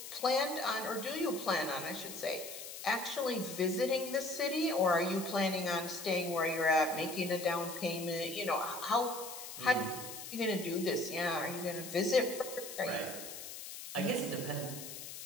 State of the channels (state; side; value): noise; left; hiss, 10 dB below the sound